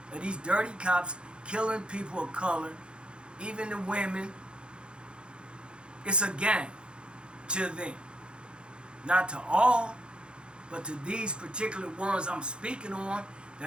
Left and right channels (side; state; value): left; late; 0.054 ms